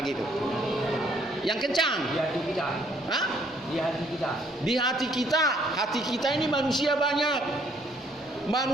gitu? Yang kencang. Di hati kita. Hah? Di hati kita. Di hati kita. Hati kita ini manusia banyak.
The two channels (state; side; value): normal; both; correlation 0.65